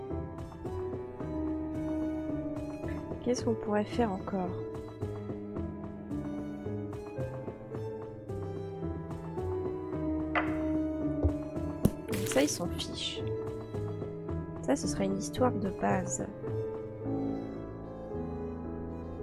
Qu'est-ce qu'on pourrait faire encore? Ça, ils s'en fichent. Ça, ce serait une histoire de base.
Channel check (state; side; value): identical; both; correlation 1.00